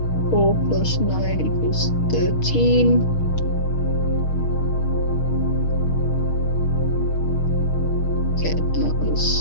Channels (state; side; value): late; right; 6.4 ms